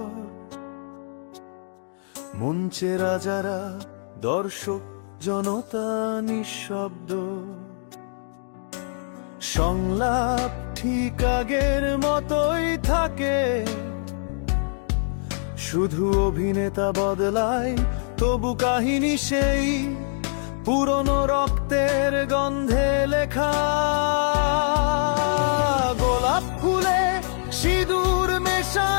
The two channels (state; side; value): silent; right; digital silence